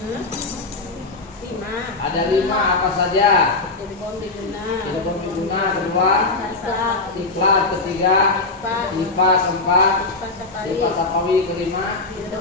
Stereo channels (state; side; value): quieter; right; 3.4 dB